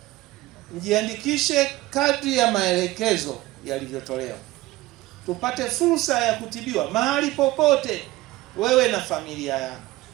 mjiandikishe kadri ya maelekezo yalivyotolewa, tupate fursa ya kutibiwa mahali popote, wewe na familia yako.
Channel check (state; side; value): quieter; left; 18.1 dB